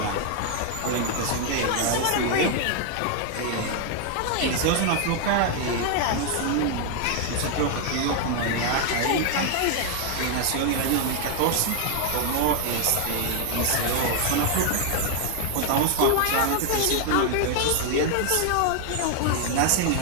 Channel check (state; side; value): different; both; correlation 0.00